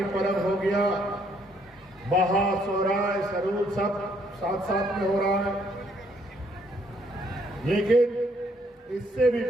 पर्व हो गया, बहा, सोहराय, सरूद सब साथ साथ में हो रहा है। लेकिन इससे भी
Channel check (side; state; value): both; normal; correlation 0.68